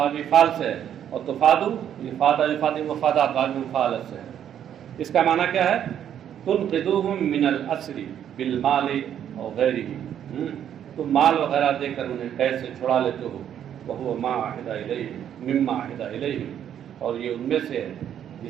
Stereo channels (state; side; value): quieter; left; 9.7 dB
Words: فعل سے ہے، اور تفادو یہ فادا یفادی مفادات بابی مفعلت سے ہے. اس کا معنی کیا ہے؟ تنقذوہم من الاسر بالمال اور غیرہ، تم مال وغیرہ دے کر انہیں قید سے چھڑا لیتے ہو. وہو ما عہد الیہ مما عہد الیہ، اور یہ ان میں سے ہے